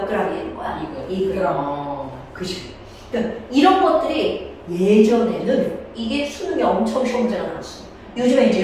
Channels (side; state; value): both; identical; correlation 1.00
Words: g이 되는 거야? 2g. 그치? 그러니까 이런 것들이 예전에는 이게 수능이 엄청 시험지가 나왔어. 요즘에 이제